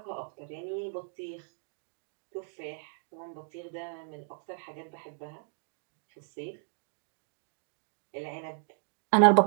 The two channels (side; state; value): left; silent; 55 dB below the other